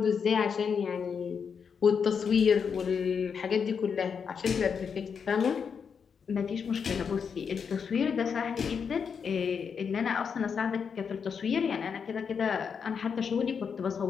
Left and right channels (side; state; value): right; quieter; 6.4 dB